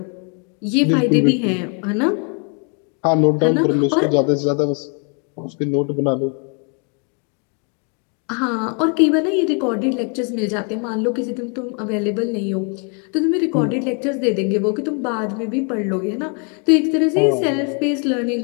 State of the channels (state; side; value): quieter; right; 37.5 dB